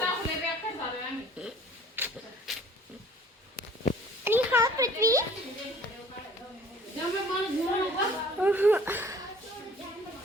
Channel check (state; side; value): normal; both; correlation 0.51